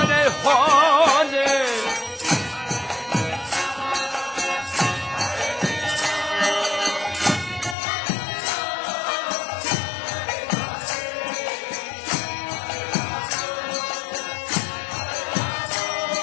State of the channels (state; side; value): drops out; right; at 7.8 s